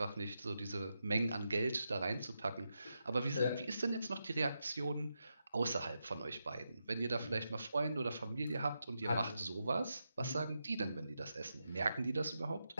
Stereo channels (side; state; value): both; inverted; correlation -0.86